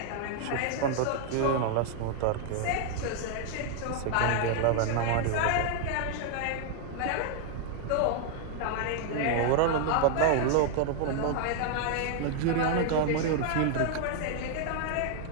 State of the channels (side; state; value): both; different; correlation 0.00